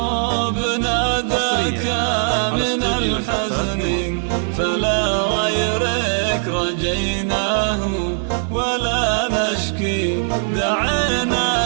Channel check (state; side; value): silent; left; digital silence